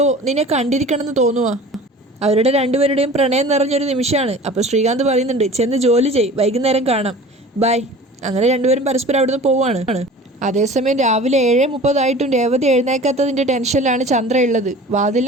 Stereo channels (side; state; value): both; normal; correlation 0.41